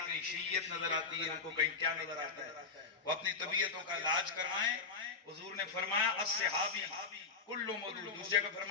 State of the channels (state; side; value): quieter; right; 4.8 dB